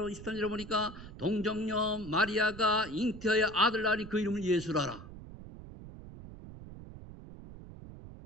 23절에 보니까 동정녀 마리아가 잉태하여 아들 낳으니 그 이름을 예수라라.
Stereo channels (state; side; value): noise; right; rumble, 14 dB below the sound